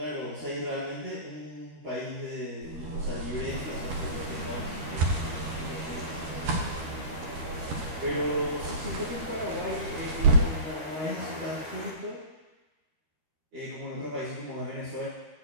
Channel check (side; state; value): left; late; 13 ms